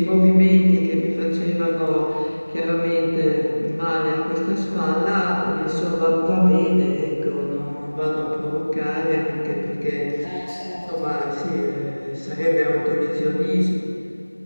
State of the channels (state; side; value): inverted; both; correlation -1.00